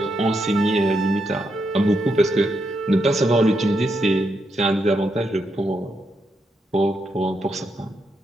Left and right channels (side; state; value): both; normal; correlation 0.81